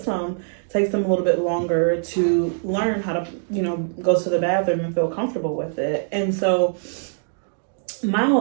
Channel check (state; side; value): silent; left; digital silence